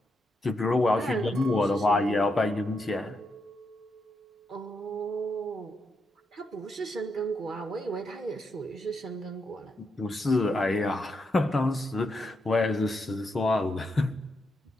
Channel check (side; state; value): both; normal; correlation 0.82